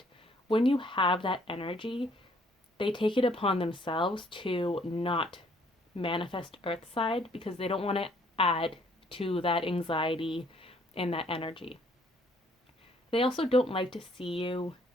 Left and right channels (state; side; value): normal; both; correlation 0.63